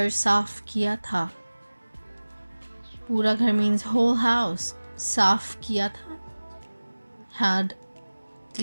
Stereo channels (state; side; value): inverted; both; correlation -1.00